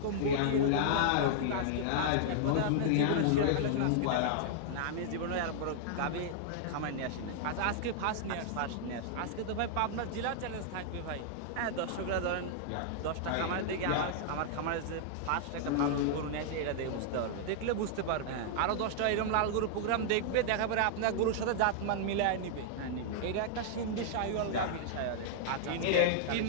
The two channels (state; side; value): different; both; correlation -0.01